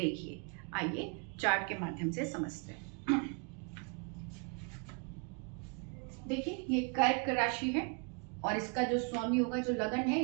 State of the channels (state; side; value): quieter; left; 36.6 dB